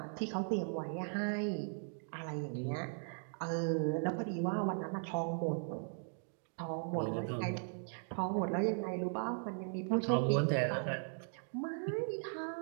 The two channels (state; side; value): silent; left; 52 dB below the other